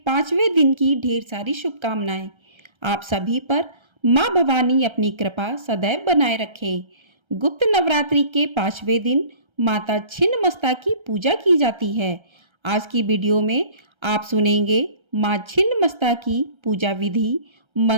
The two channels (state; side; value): late; left; 1.3 ms